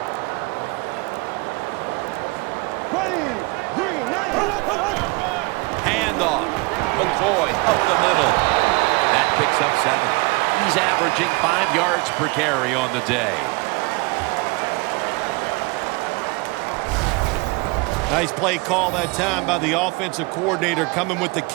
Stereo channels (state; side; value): quieter; left; 26.3 dB